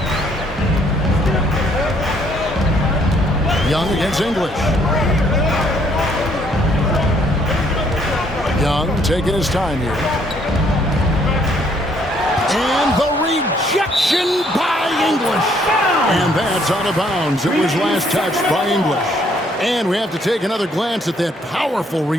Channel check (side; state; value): both; normal; correlation 0.66